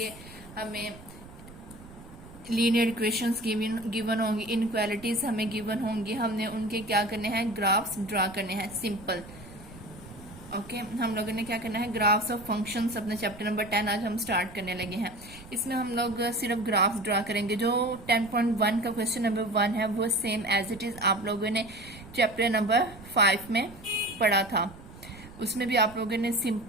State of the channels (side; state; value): right; noise; rumble, 18 dB below the sound